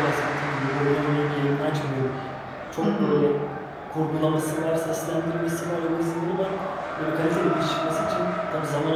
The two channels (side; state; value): both; identical; correlation 1.00